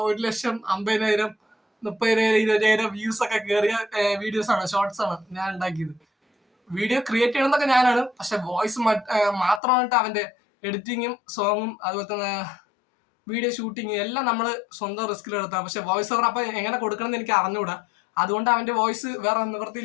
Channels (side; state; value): right; drops out; at 9.6 s